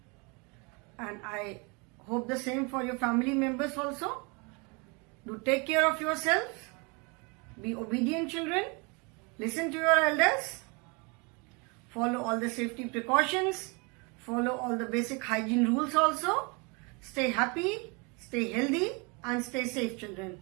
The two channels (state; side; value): quieter; left; 30.5 dB